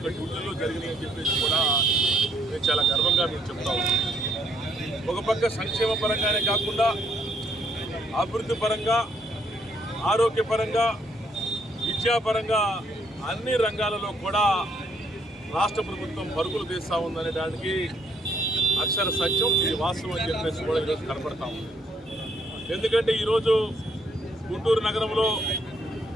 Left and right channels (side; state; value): both; normal; correlation 0.70